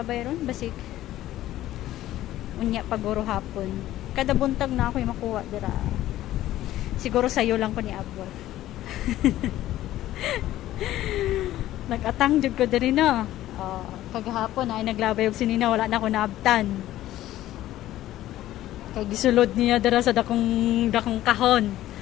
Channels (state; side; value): quieter; right; 14.2 dB